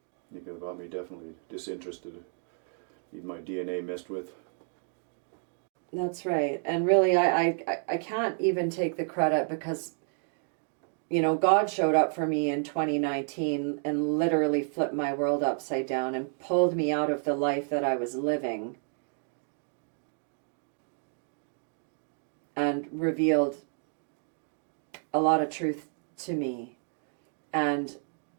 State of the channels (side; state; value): left; silent; 57 dB below the other